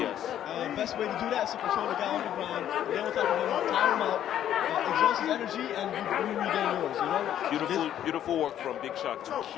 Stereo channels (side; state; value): right; quieter; 10.9 dB